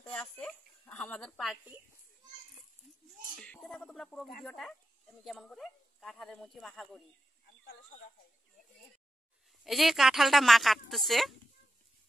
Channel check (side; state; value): both; normal; correlation 0.88